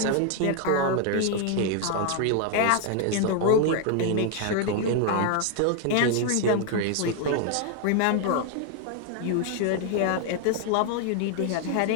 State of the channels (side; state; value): both; different; correlation 0.00